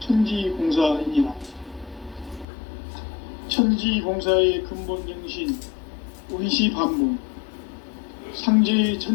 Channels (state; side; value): drops out; right; at 2.5 s